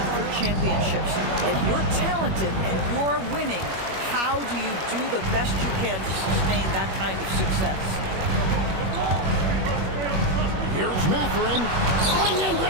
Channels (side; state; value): left; late; 21 ms